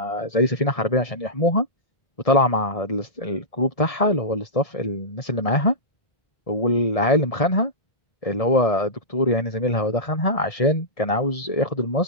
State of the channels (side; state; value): right; late; 1.7 ms